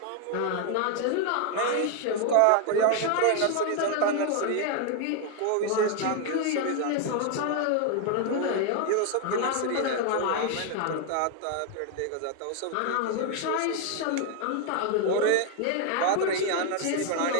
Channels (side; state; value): both; different; correlation 0.00